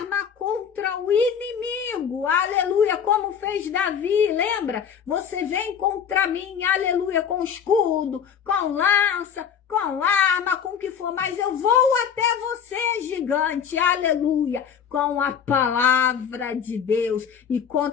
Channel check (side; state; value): right; quieter; 7.6 dB